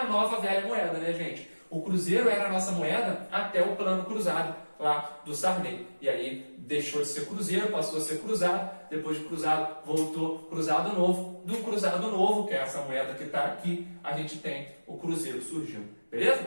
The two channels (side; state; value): both; inverted; correlation -1.00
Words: nova velha moeda, né, gente? O cruzeiro era a nossa moeda até o plano cruzado lá do Sarney. E aí deixou de ser cruzeiro, passou a ser cruzado. Depois de cruzado, voltou cruzado novo. Do cruzado novo, que é essa moeda que está aqui, a gente tem o cruzeiro surgindo. Beleza?